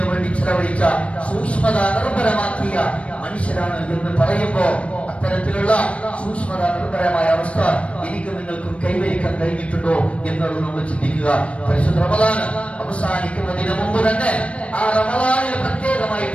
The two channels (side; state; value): right; late; 0.062 ms